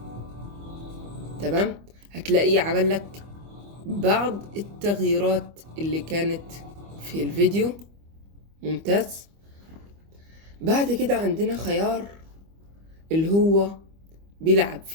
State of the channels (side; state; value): left; late; 25 ms